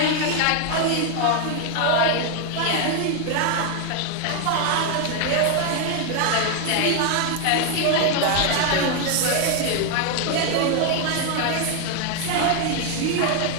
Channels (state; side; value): different; both; correlation 0.01